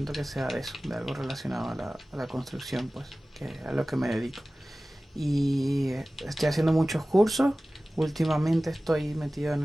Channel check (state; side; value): normal; both; correlation 0.97